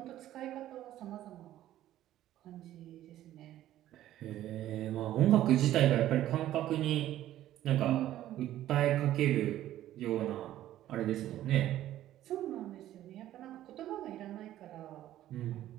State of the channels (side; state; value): left; quieter; 13.2 dB